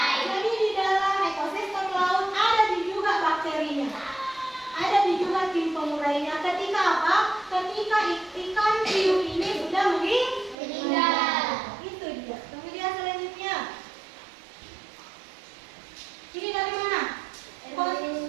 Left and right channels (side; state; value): left; drops out; at 10.6 s